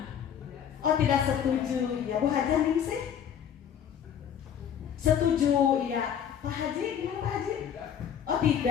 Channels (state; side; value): quieter; right; 8.7 dB